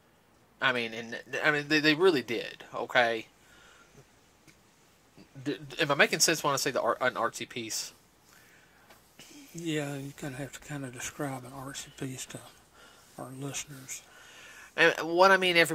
I mean, they really did, okay? Am I making sense when I say an artsy piece? Yeah, you kind of have to kind of describe an artsy piece to our listeners. And what I mean,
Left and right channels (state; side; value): identical; both; correlation 1.00